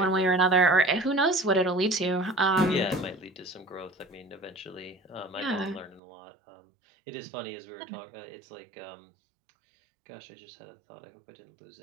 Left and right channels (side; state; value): left; drops out; at 6.0 s